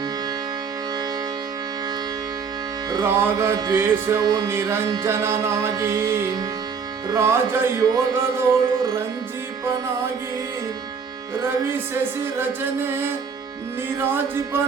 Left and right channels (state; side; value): quieter; left; 5.9 dB